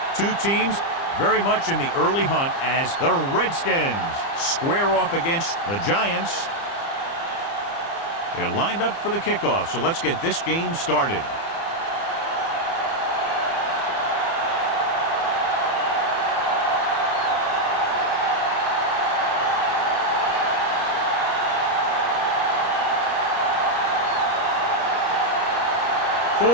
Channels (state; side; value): late; right; 30 ms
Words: two teams very much in the early hunt as the Redskins square off against the Giants. They're lined up for the kickoff, so let's get this game started.